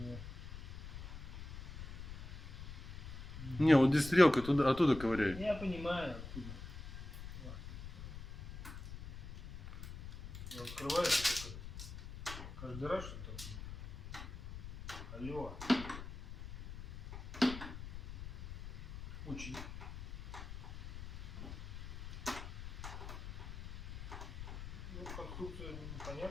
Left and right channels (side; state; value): left; noise; rumble, 9 dB below the sound